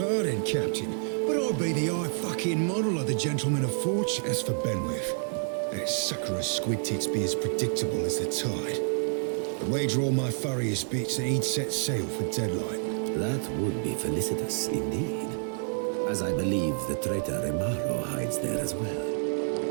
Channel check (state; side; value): silent; left; digital silence